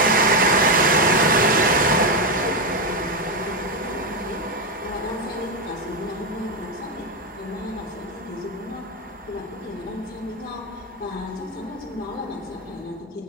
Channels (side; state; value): both; normal; correlation 0.08